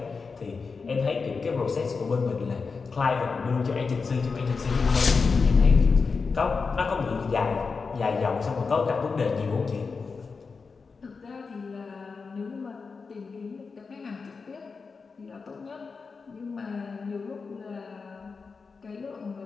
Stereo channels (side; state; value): right; quieter; 4.8 dB